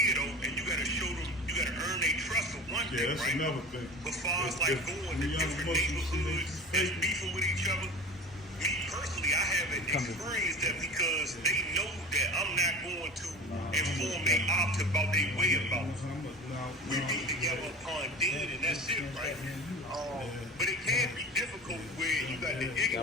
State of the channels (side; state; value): both; normal; correlation 0.36